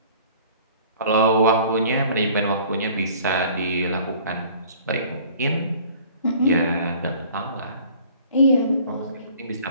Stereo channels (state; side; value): inverted; both; correlation -0.50